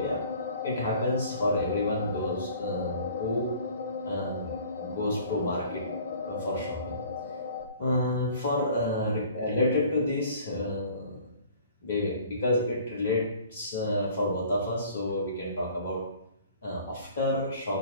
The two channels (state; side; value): inverted; both; correlation -0.50